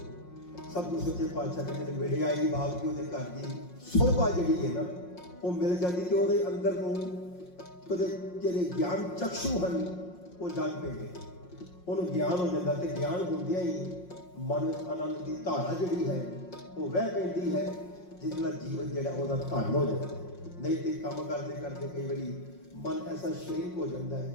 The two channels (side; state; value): right; late; 5.6 ms